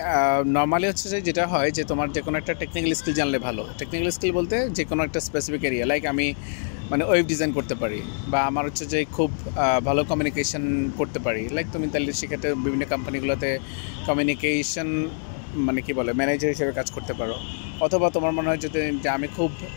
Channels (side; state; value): right; silent; digital silence